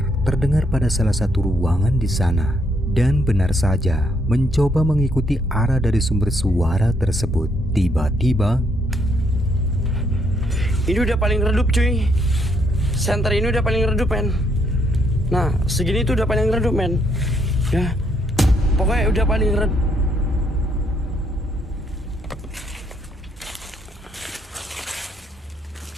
terdengar pada salah satu ruangan di sana. Dan benar saja, mencoba mengikuti arah dari sumber suara tersebut, tiba-tiba ini udah paling redup cuy. Center ini udah paling redup men. Nah segini tuh udah paling redup men. Ya pokoknya udah paling redup.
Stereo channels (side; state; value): both; normal; correlation 0.73